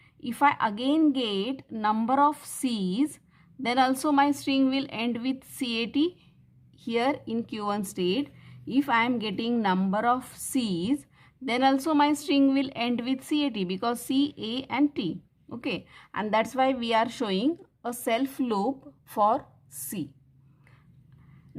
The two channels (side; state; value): both; identical; correlation 1.00